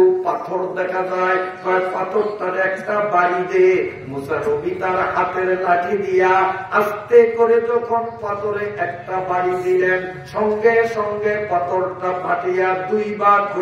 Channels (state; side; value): identical; both; correlation 1.00